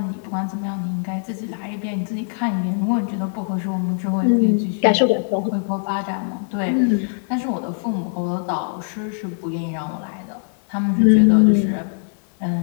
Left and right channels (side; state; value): right; silent; 65 dB below the other